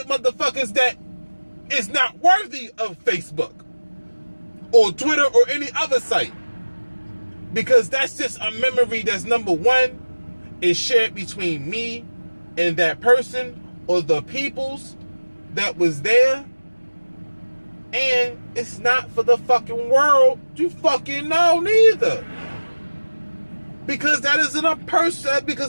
motherfuckers that is not worthy of Facebook or Twitter or any other site. Because that's just a memory that's, number one, is shared between me and that person or the peoples that was there. And it's not for the fucking world to fucking know neither. Because that's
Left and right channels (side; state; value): both; inverted; correlation -1.00